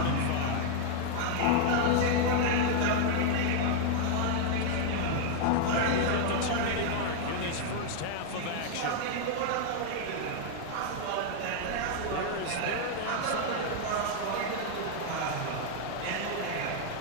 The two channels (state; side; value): different; both; correlation 0.00